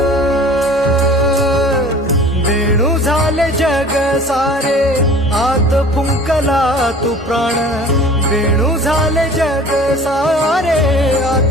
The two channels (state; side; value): normal; both; correlation 0.45